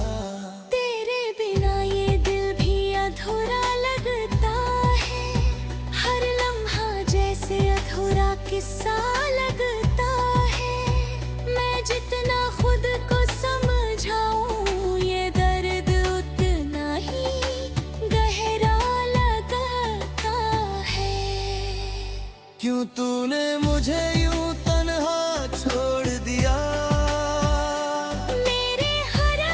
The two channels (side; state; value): both; identical; correlation 1.00